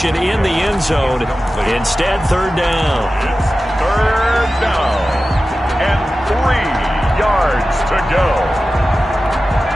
in the end zone. Instead, 3rd down. It's 3rd down. And 3 yards to go.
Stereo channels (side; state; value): both; normal; correlation 0.94